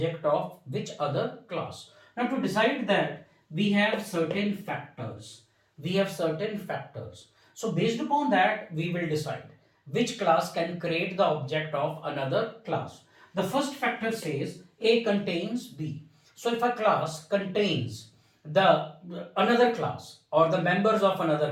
of which other class. Now to decide that, we have certain factors. We have certain factors. So based upon that, we will decide which class can create the object of another class. The first factor says A contains B. So if a class contains the another class or the members of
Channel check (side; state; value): both; identical; correlation 1.00